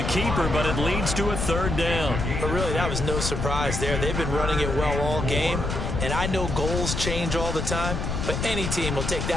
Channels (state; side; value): noise; left; rumble, 2 dB below the sound